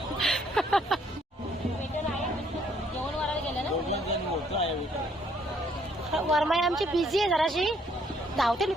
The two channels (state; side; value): normal; both; correlation 0.66